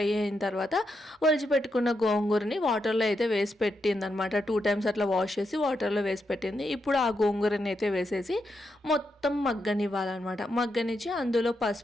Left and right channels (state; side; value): normal; both; correlation 0.83